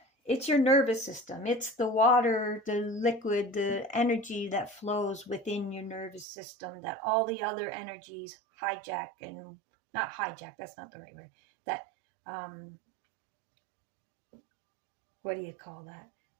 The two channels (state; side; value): drops out; left; at 6.2 s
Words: it's your nervous system. It's the water, the liquid, the energy that flows within your nervous system that all the other energies hijack, and not hijack, that's not the right word. That, what do you call